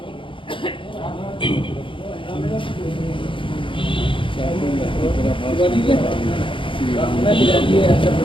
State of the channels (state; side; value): late; right; 0.25 ms